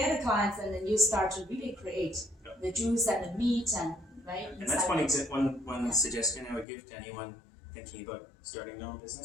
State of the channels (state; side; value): drops out; right; at 6.7 s